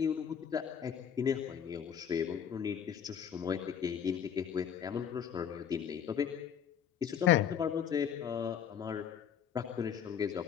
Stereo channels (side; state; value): right; quieter; 8.3 dB